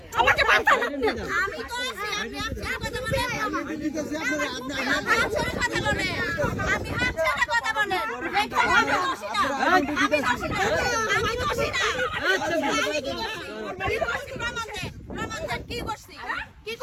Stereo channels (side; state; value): both; identical; correlation 1.00